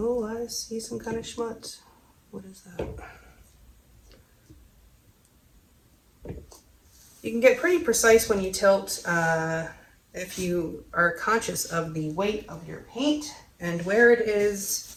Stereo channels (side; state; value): both; identical; correlation 1.00